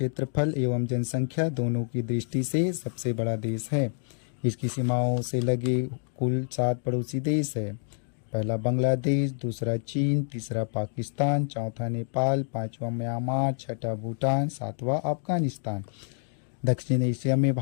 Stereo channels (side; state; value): right; silent; 59 dB below the other